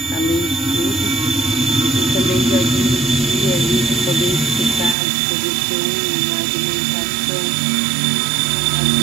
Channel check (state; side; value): drops out; left; at 5.0 s